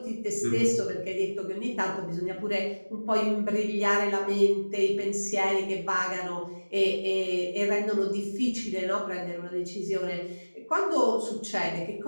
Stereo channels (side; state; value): both; inverted; correlation -1.00